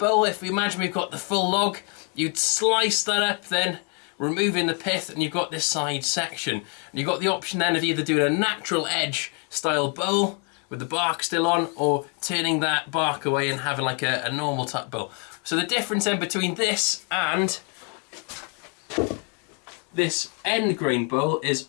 if we imagine we've got the full log, you'd slice that up then, removing the pith, and you've got this side section. And you've got the option then of either doing a natural edge style bowl with the bark still on, or turning that bark away and having like a normal type bowl. So the difference then between this and this end grain bowl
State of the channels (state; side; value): quieter; right; 37.6 dB